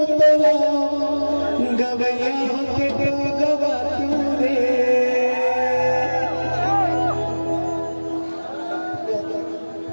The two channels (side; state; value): both; inverted; correlation -1.00